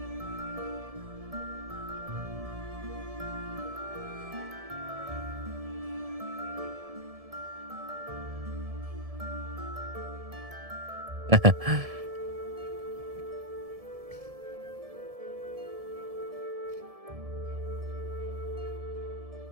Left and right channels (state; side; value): late; left; 1.7 ms